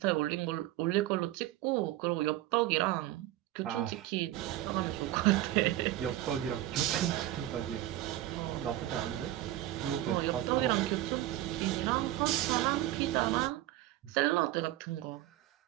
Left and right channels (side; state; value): left; quieter; 14.7 dB